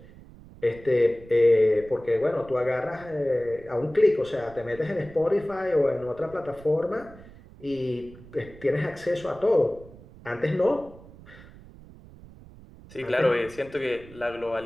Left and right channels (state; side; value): noise; right; rumble, 20 dB below the sound